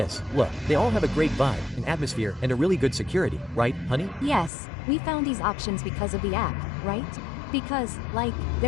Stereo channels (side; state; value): right; drops out; at 4.5 s